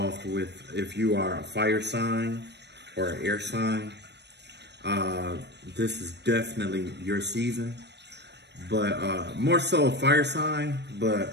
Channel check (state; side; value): late; left; 0.50 ms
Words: with, if you are a fire sign or an air sign. This is definitely your season, but more so a fire sign,